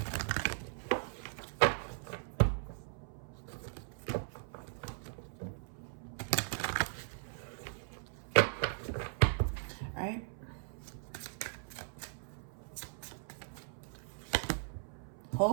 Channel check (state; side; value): silent; left; 52 dB below the other